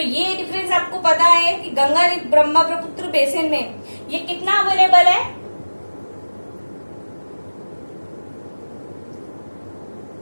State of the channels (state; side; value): inverted; both; correlation -1.00